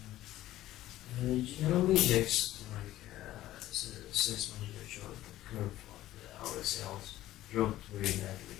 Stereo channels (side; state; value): right; quieter; 14.7 dB